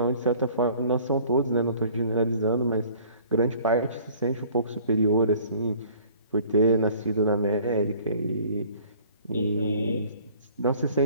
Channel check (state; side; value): inverted; both; correlation -0.52